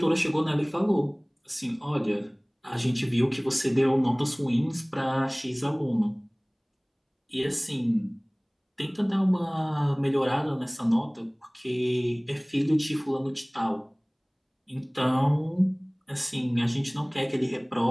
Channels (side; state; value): both; identical; correlation 1.00